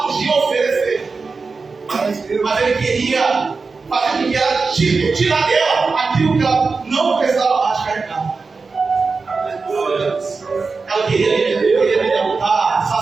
podia oferecer, mas ele queria fazer com que ela tirar dela aquilo que ela não precisava mais carregar. Ela queria me derrotar,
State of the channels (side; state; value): left; quieter; 4.4 dB